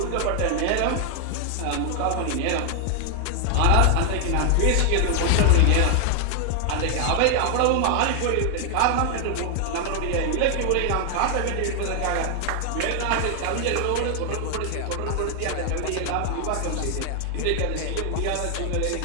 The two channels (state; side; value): different; both; correlation 0.00